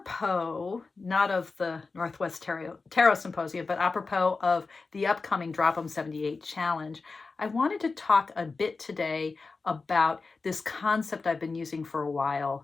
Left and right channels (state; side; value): quieter; right; 4.1 dB